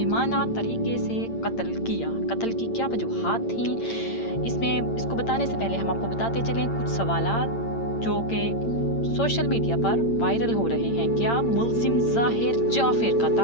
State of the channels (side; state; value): right; late; 8.8 ms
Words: तरीके से कत्ल किया। कत्ल की क्या वजूहात थी, इसको बताने से पहले हम आपको बताते चलें कुछ सवालात जो कि सोशल मीडिया पर वायरल हो रहे हैं। क्या मुलजिम ज़ाहिर जाफिर का